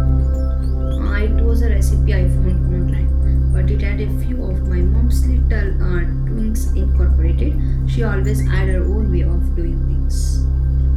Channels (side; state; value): both; identical; correlation 1.00